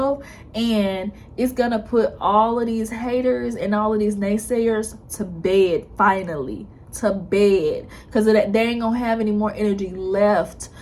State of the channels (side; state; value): both; identical; correlation 1.00